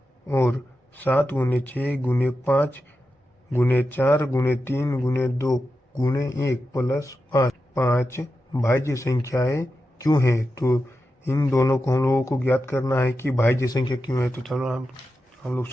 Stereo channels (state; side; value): normal; both; correlation 0.90